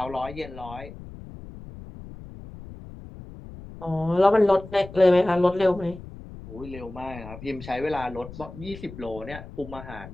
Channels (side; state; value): left; noise; rumble, 15 dB below the sound